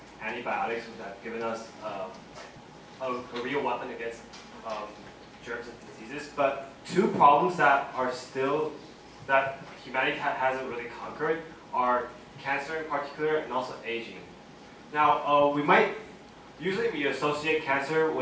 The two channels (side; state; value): both; identical; correlation 1.00